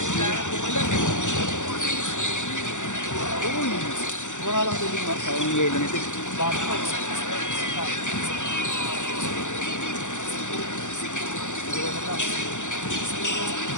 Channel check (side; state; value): right; late; 0.85 ms